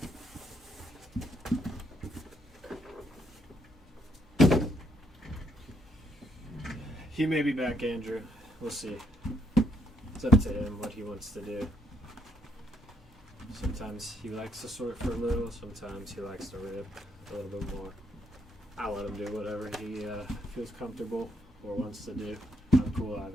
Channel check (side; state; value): both; normal; correlation 0.74